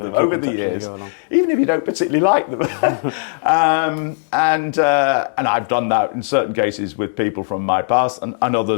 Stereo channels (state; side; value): silent; right; 67 dB below the other